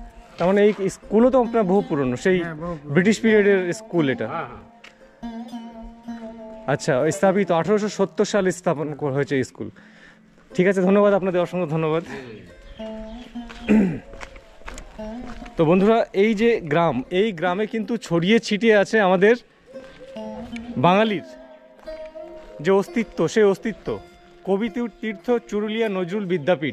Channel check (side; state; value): both; identical; correlation 1.00